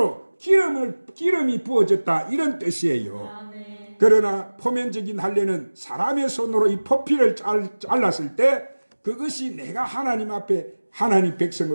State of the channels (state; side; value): inverted; both; correlation -1.00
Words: 기름이 부어졌다, 이런 뜻이에요. 그러나 표면적인 할례는 사람의 손으로 이 포피를 잘랐을 때 그것이 내가 하나님 앞에 하나님